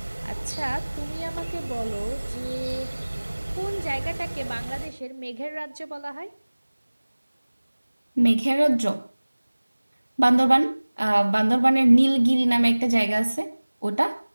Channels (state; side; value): inverted; both; correlation -1.00